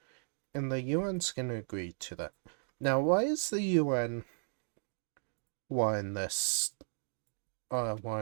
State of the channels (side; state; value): left; silent; digital silence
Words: And the UN's gonna agree to that. Now, why is the UN wanting this,